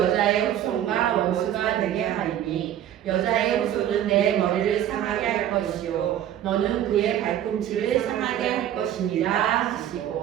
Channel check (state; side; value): quieter; left; 11.1 dB